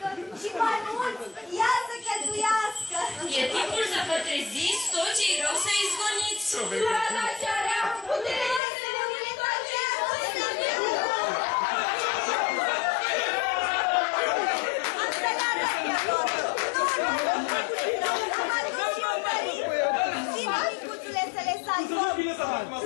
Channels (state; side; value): drops out; right; at 8.6 s